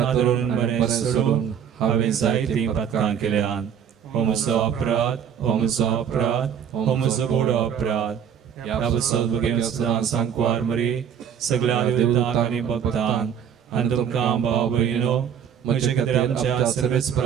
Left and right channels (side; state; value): left; quieter; 8.3 dB